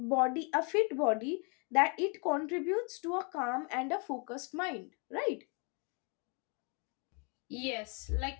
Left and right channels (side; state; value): right; quieter; 35.1 dB